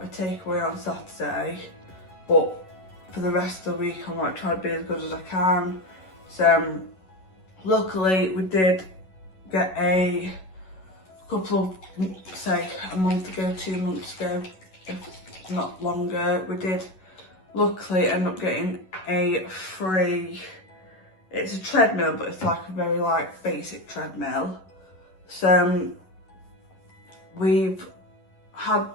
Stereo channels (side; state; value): right; late; 11 ms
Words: a takeaway on Saturday, but for the rest of the week I'm like trying to be as good as I can. So luckily we did get a couple of, say a month ago, 2 months ago, if not longer, we did luckily ended up getting a free, it's a treadmill, but it's like a very like basic treadmill. So we've had